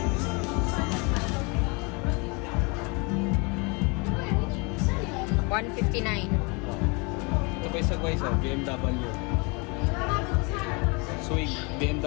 $159. Ito pa isa guys, BMW. Swing,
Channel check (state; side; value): quieter; right; 30.3 dB